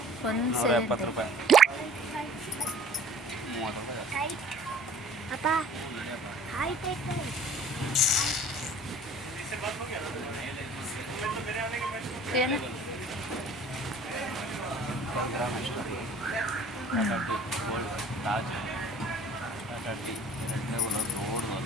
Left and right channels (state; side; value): normal; both; correlation 0.48